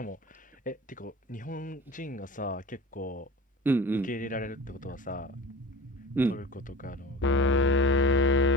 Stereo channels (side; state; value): both; normal; correlation 0.37